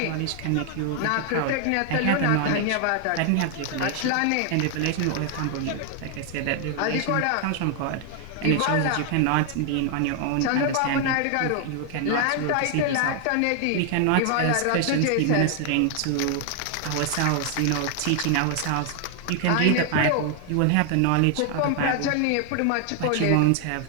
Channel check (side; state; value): both; different; correlation 0.00